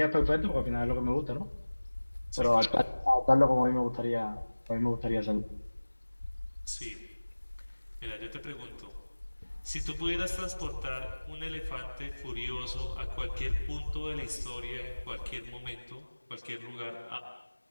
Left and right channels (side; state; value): both; inverted; correlation -1.00